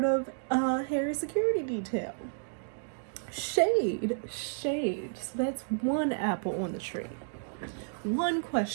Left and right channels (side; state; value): left; silent; digital silence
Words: of Harry's security detail. Shade. So that's one apple on the tree. One